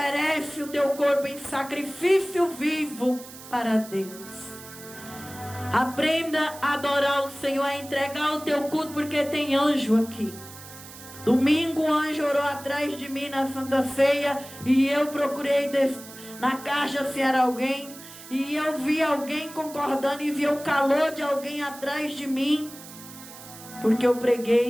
o teu corpo em sacrifício vivo para Deus. Aprenda a adorar o Senhor, a entregar o teu culto, porque tem anjo aqui. Domingo o anjo orou atrás de mim na Santa Ceia, e eu procurei na caixa se era alguém, e eu vi alguém concordando, e vi o calor de alguém atrás de mim, porque eu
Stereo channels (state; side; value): noise; right; hiss, 16 dB below the sound